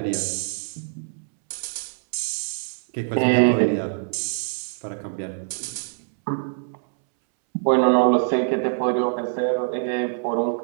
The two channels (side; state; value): left; silent; 63 dB below the other